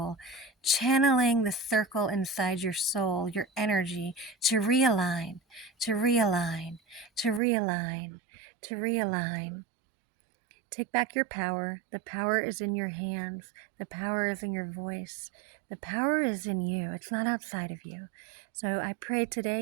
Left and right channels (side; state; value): left; drops out; at 7.4 s